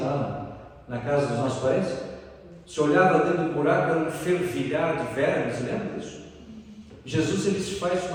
na casa dos nossos parentes. Você olhava dentro do buraco, era um fervilhar de vermes, lembra disso? Jesus, ele se faz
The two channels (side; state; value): both; identical; correlation 1.00